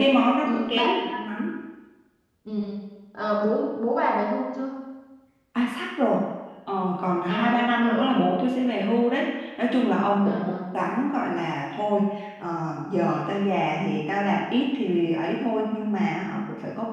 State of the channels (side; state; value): both; identical; correlation 1.00